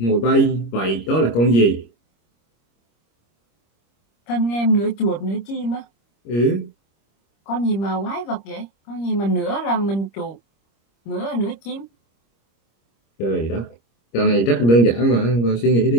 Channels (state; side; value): late; right; 25 ms